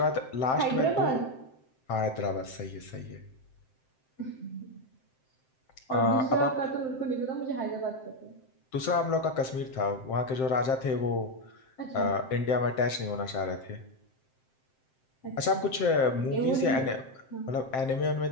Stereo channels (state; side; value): late; right; 7.7 ms